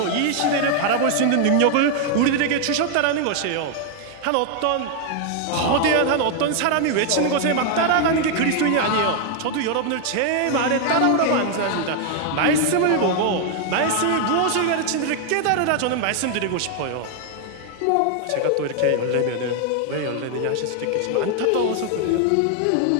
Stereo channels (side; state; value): both; different; correlation 0.00